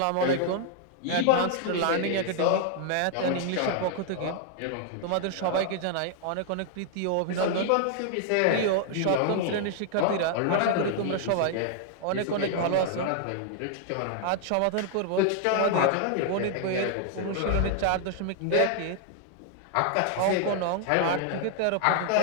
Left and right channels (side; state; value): both; different; correlation 0.00